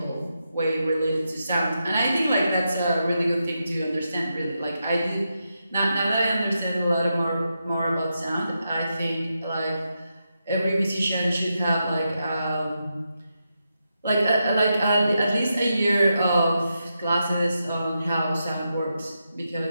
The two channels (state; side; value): inverted; both; correlation -0.86